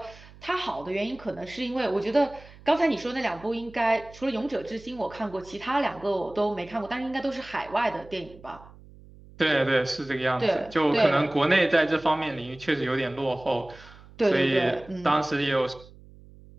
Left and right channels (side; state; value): right; noise; hum, 21 dB below the sound